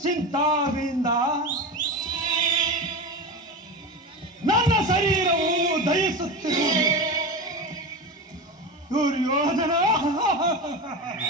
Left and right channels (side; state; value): both; normal; correlation 0.23